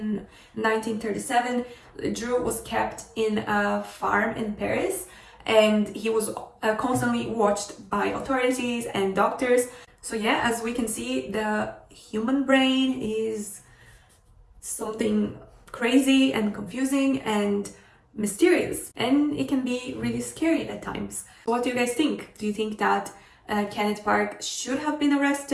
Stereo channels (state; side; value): identical; both; correlation 1.00